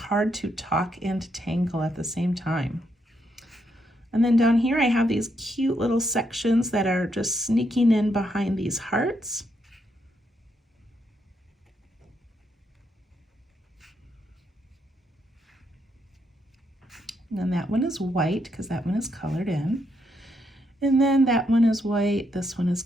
to talk and tangle at the same time. And then down here I have these cute little sections that are just sneaking in behind these hearts. And then that one is white because that one is colored in. And then that one is white, this one is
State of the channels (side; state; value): both; normal; correlation 0.78